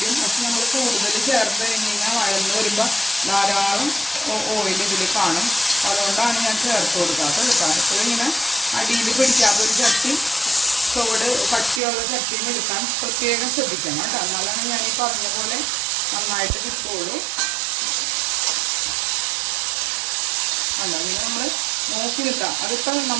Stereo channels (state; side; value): drops out; left; at 11.8 s